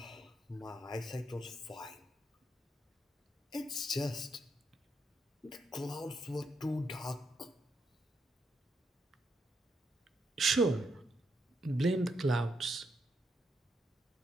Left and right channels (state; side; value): normal; both; correlation 0.79